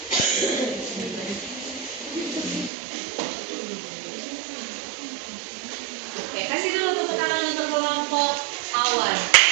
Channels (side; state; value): left; drops out; at 2.7 s